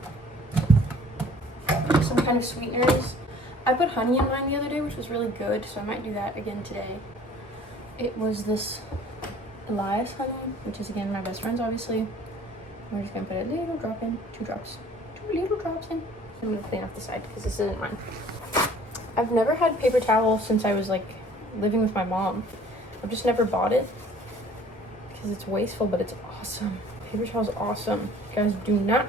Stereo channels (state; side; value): normal; both; correlation 0.52